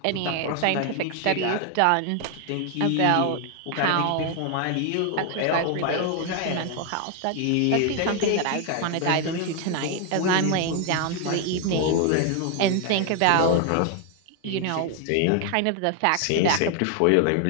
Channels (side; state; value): both; different; correlation 0.00